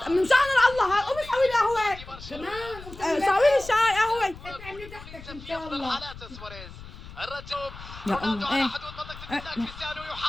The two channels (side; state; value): left; noise; rumble, 15 dB below the sound